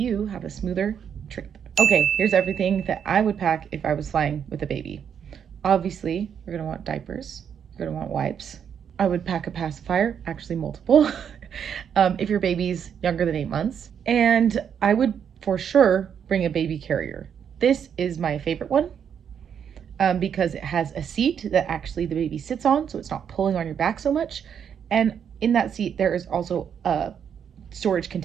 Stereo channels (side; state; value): left; quieter; 8.0 dB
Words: have a smoother trip. Okay, here's everything that I would pack if I was flying with a baby. Obviously, you're gonna want diapers, you're gonna want wipes. I would pack a pacifier, actually multiple, if your baby's younger than 8 months. And I would for sure bring a baby carrier. This is my favorite one because it has a seat that actually the baby sits on, so it's not pulling on your back so much. And in that seat, there is also a storage